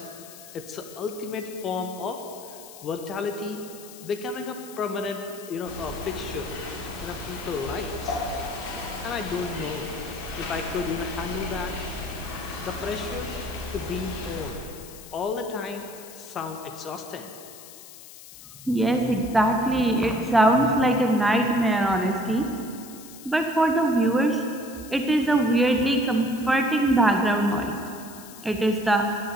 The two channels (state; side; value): noise; left; hiss, 17 dB below the sound